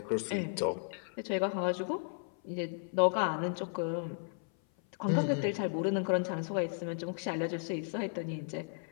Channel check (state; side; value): silent; right; 55 dB below the other